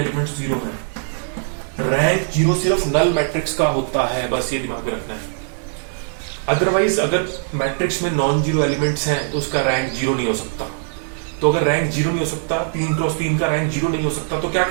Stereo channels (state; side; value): silent; left; 64 dB below the other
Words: जीरो हैं, रैंक जीरो सिर्फ नल मैट्रिक्स का होता है, बस ये दिमाग में रखना है। अदरवाइज अगर मैट्रिक्स में नॉन जीरो एलिमेंट्स हैं तो उसका रैंक जीरो नहीं हो सकता। तो अगर रैंक जीरो नहीं हो सकता, 3x3 का रैंक जीरो नहीं हो सकता, तो क्या